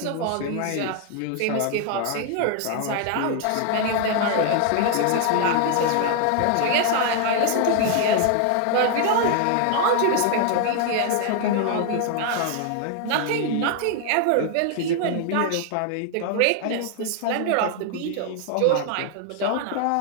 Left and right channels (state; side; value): different; both; correlation 0.00